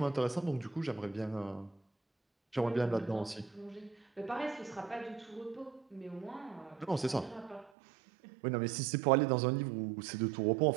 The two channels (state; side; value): drops out; left; at 7.7 s